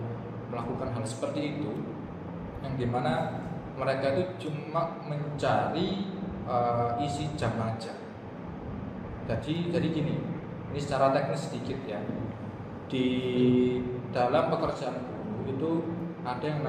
melakukan hal seperti itu, yang dimana mereka itu cuma mencari isi jam aja. Jadi gini, ini secara teknis sedikit ya. Di dalam pekerjaan guru itu ada yang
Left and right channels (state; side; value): identical; both; correlation 1.00